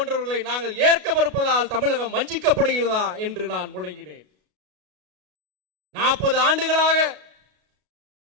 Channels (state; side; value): late; left; 33 ms